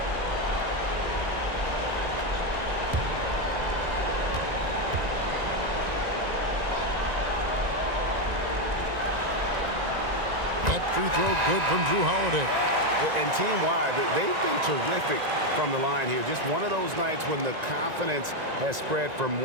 That free throw good from Drew Holiday. And team-wide, they've been terrific from the line here. Just one of those nights when the confidence has spread from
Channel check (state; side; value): late; left; 1.9 ms